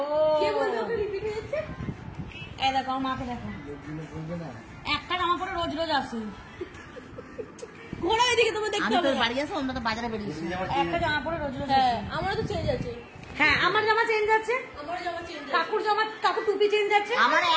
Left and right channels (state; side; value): identical; both; correlation 1.00